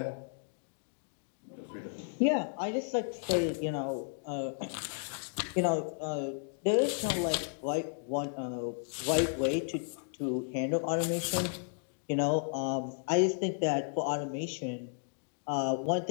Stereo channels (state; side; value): silent; right; digital silence